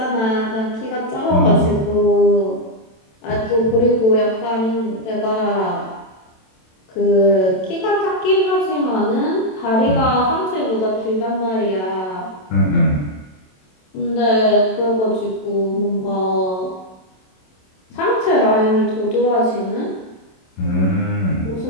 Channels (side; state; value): right; late; 27 ms